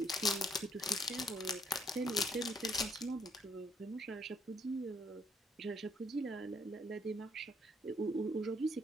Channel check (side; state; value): both; normal; correlation 0.68